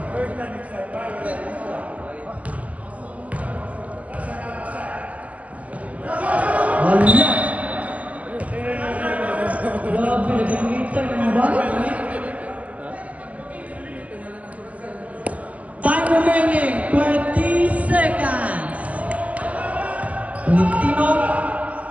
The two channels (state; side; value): late; left; 0.072 ms